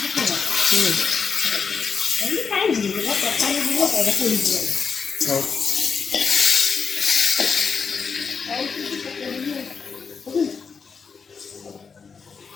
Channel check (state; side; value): quieter; right; 5.7 dB